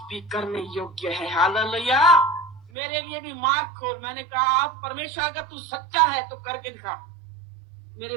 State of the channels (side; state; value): left; drops out; at 2.7 s